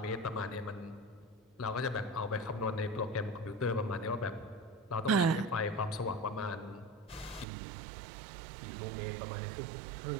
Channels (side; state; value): left; drops out; at 7.5 s